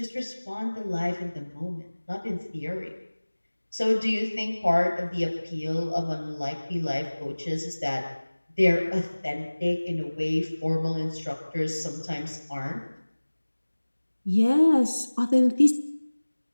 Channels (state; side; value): inverted; both; correlation -1.00